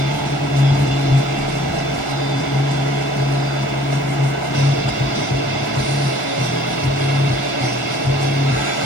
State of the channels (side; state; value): right; late; 1.4 ms